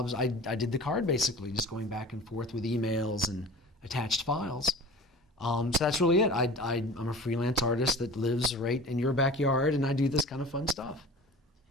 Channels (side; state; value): both; normal; correlation 0.39